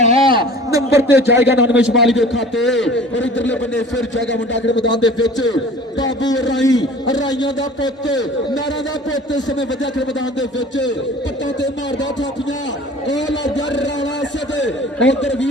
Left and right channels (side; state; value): both; normal; correlation 0.45